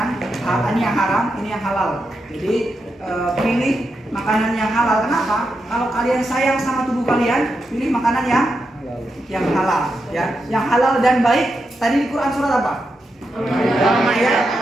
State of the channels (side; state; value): both; normal; correlation 0.86